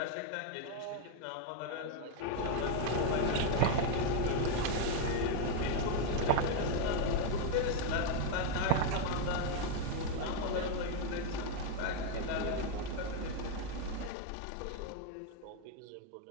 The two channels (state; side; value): different; both; correlation 0.01